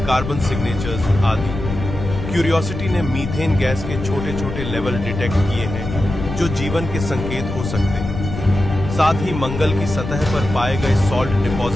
कार्बन सिग्नेचर्स आदि। क्यूरियोसिटी ने मीथेन गैस के छोटे छोटे लेवल डिटेक्ट किए हैं, जो जीवन के संकेत हो सकते हैं। साथ ही मंगल की सतह पर पाए गए सॉल्ट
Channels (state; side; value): noise; left; rumble, 7 dB below the sound